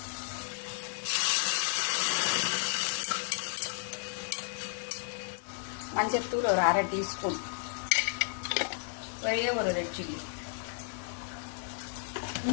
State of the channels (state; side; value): silent; right; digital silence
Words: மஞ்சத்தூள் ஒரு 1/2 டீஸ்பூன், ஒரே ஒரு ரெட் சில்லி,